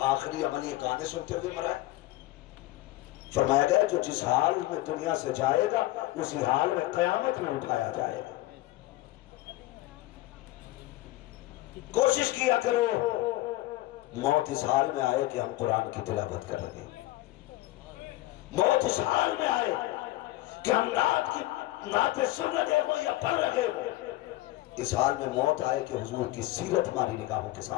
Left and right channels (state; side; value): quieter; right; 17.4 dB